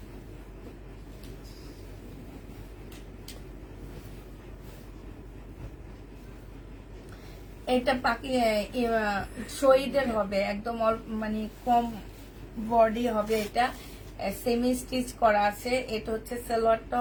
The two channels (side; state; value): both; identical; correlation 1.00